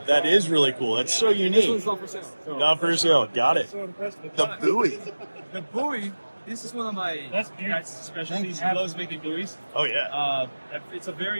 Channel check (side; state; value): both; inverted; correlation -1.00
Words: that is really cool. That's so this unique. one's not for sale. So, Not for sale. Got it. The buoy. the buoy, this is one of my guys' specialties. He loves making buoys. Oh, yeah. It's a